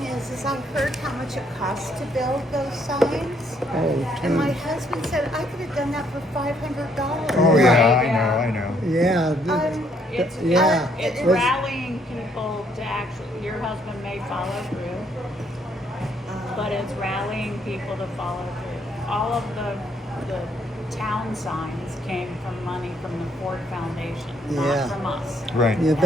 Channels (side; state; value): both; normal; correlation 0.68